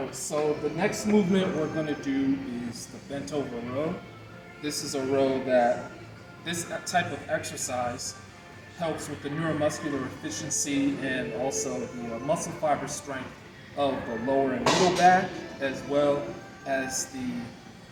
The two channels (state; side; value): identical; both; correlation 1.00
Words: so the next movement we're going to do is the bent over row. This is a row that, this type of exercise helps with the neuromuscular efficiency and also the muscle fiber strength of the lower and middle back, as well as